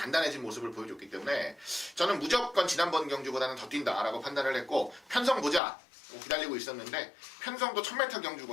모습을 보여줬기 때문에 저는 무조건 지난번 경주보다는 더 뛴다라고 판단을 했고, 편성 보자 기다리고 있었는데 편성도 1000m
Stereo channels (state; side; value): drops out; right; at 5.6 s